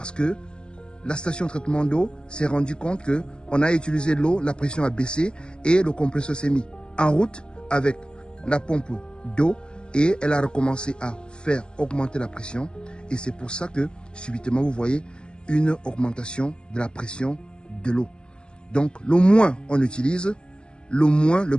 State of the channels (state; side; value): late; right; 0.052 ms